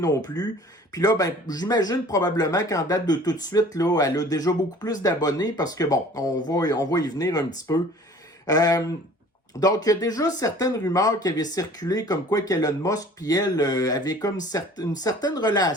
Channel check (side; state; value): both; normal; correlation 0.48